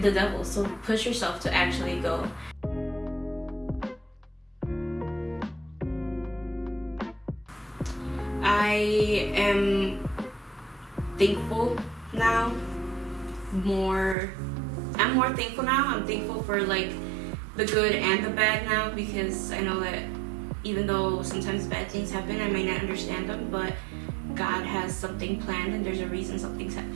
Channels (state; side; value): drops out; left; at 14.2 s